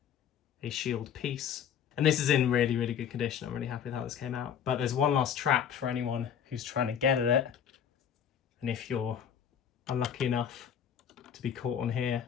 a shield piece. And this is in really, really good condition. I'm really happy with how this came out. But there's one last trap for anyone who's trying to get at it. And if you're unlucky enough to be caught on here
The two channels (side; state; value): right; quieter; 8.3 dB